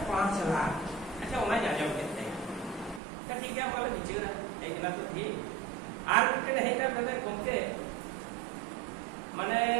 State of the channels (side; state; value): left; drops out; at 3.0 s